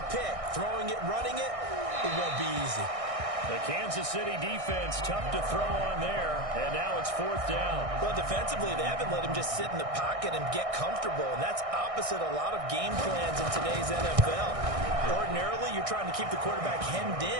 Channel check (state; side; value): late; left; 1.6 ms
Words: pick, throwing it, running it, it won't be easy. The Kansas City defense, tough to throw on there, and now it's 4th down. Well, defensively, they haven't let him just sit in the pocket and get comfortable, and that's opposite a lot of game plans in today's NFL. Ordinarily, you're trying to keep the quarterback hemmed